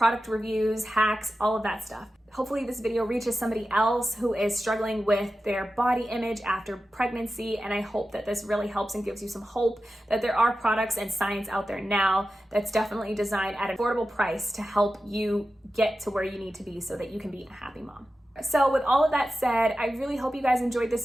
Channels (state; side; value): normal; both; correlation 0.93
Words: reviews, hacks, all of that stuff. Hopefully this video reaches somebody else who is struggling with their body image after pregnancy, and I hope that this really helps and gives you some hope that there are products and science out there now that's definitely designed at an affordable price to help you get to where you need to be so that you can be a happy mom. So with all of that said, I really hope you guys enjoyed this